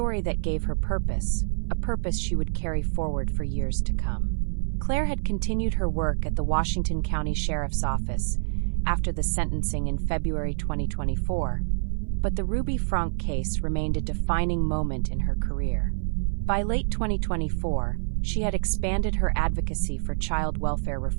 that gave her purpose, a purpose she would carry forward for years to come. Claire had continued her work at the Washington County Sheriff's Office after the sentencing in February 2024, but the Ruby Franke case remained a defining moment in her career. By late 2024, she had expanded her advocacy for child welfare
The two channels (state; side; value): silent; left; 56 dB below the other